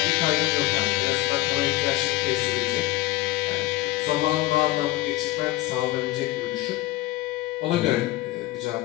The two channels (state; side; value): quieter; right; 17.6 dB